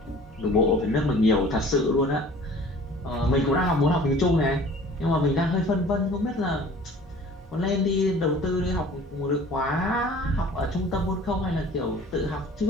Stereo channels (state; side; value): normal; both; correlation 0.47